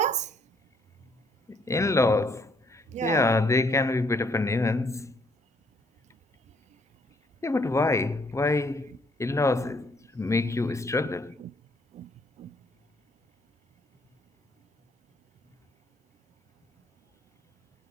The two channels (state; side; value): normal; both; correlation 0.68